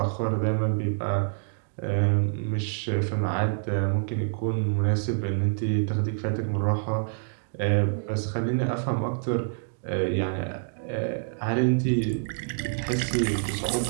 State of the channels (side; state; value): left; silent; digital silence